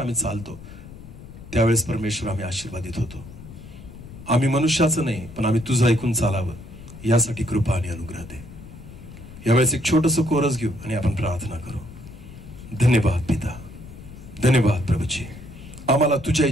चालतो, त्यावेळेस परमेश्वर आम्ही आशीर्वादित होतो. आम्ही मनुष्याचं नाही, पण आम्ही तुझं ऐकून चालावं, यासाठी कृपा आणि अनुग्रह दे. यावेळेस एक छोटंसं कोरस घेऊ आणि आपण प्रार्थना करू. धन्यवाद पिता. धन्यवाद प्रभूजी. आम्हाला तुझ्या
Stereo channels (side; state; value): left; noise; rumble, 16 dB below the sound